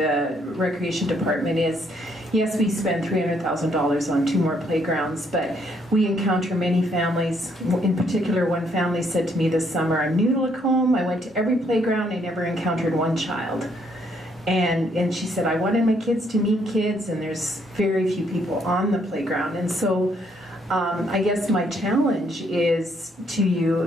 Recreation Department is, yes, we spend $300,000 on 2 more playgrounds, but we encounter many families. In particular, one family said to me this summer, I'm new to Lacombe, I went to every playground, I never encountered one child. And she said, I wanted my kids to meet kids, and there's very few people on the playground. And so I guess my challenge is to you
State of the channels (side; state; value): both; normal; correlation 0.70